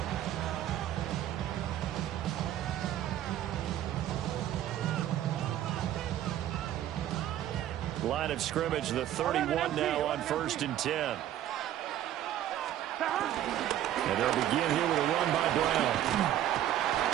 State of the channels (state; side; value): quieter; left; 12.0 dB